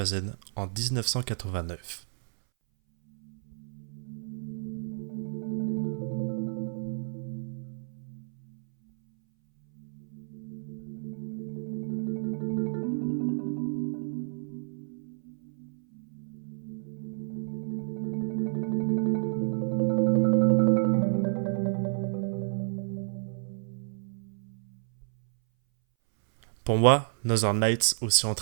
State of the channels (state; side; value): silent; left; 58 dB below the other